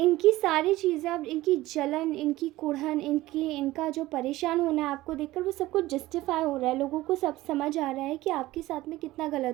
सारी चीज़ें, अब इनकी जलन, इनकी कुढ़न, इनका जो परेशान होना है आपको देखकर, वो सब कुछ जस्टिफाई हो रहा है। लोगों को सब समझ आ रहा है कि आपके साथ में कितना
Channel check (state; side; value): quieter; left; 17.3 dB